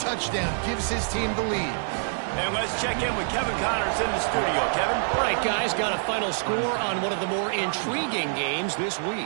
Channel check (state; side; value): silent; left; digital silence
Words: gives his team the lead. And let's check in with Kevin Connors in the studio. Kevin? All right, guys, got a final score on one of the more intriguing games this